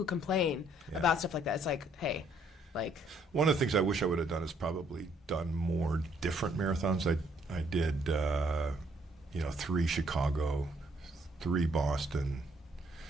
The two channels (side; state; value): both; normal; correlation 0.66